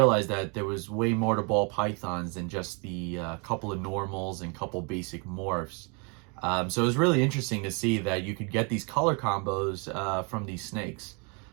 that there was way more to ball pythons than just the couple of normals and couple basic morphs. So it was really interesting to see that you could get these color combos from these snakes.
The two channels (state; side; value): quieter; left; 34.3 dB